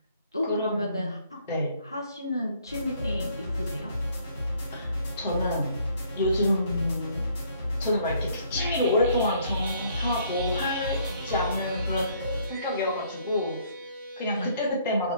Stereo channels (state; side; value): inverted; both; correlation -0.64